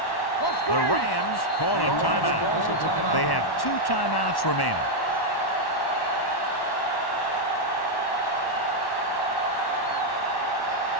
The Rams call a timeout. They have 2 timeouts remaining.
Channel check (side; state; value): right; late; 1.1 ms